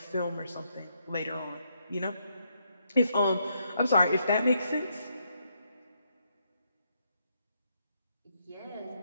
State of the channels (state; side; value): inverted; both; correlation -0.77